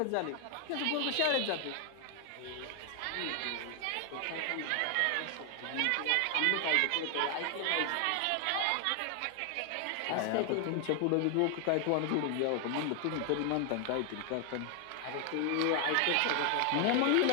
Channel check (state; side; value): different; both; correlation 0.00